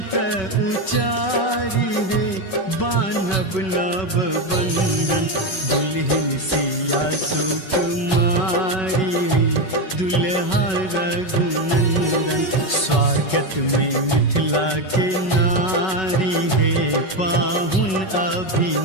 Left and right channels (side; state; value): right; late; 5.3 ms